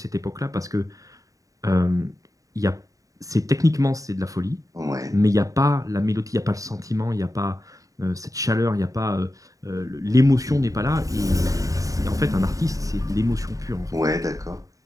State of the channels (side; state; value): left; late; 0.16 ms